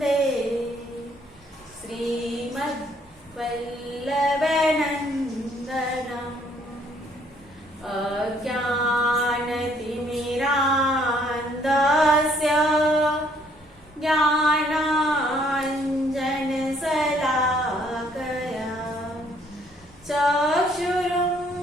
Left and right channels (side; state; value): both; normal; correlation 0.64